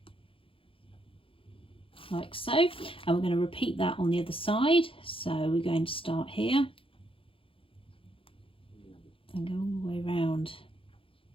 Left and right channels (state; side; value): late; right; 0.26 ms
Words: like so, and we're going to repeat that on the other side. So we're going to start here and go all the way around